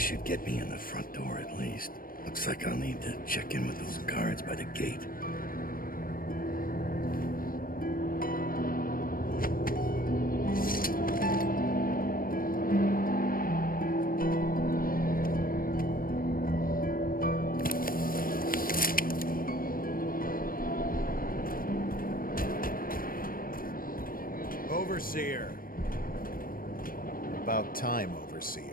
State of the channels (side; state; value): right; late; 0.41 ms